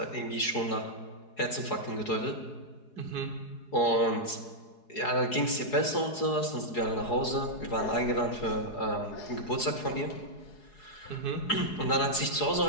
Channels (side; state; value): right; late; 4.8 ms